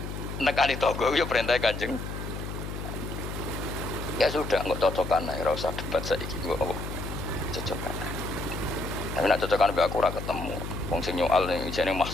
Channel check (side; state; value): left; noise; hum, 6 dB below the sound